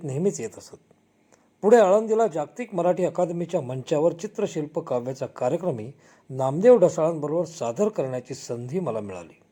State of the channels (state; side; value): identical; both; correlation 1.00